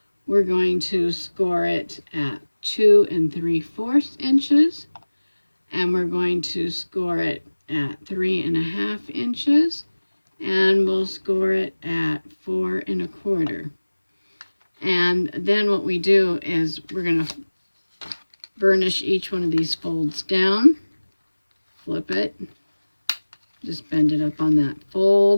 We're going to score it at 2 3/4 inches. And we're going to score it at 3 1/2 inches. And we'll score it at 4 1/4 1/4. And then what we do is we're going to burnish each one of these folds down, flip it, just bend it up on that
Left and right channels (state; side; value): inverted; both; correlation -1.00